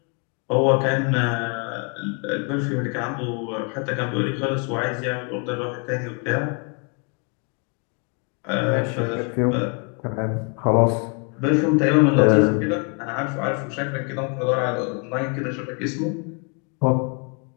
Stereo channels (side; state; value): right; quieter; 36.1 dB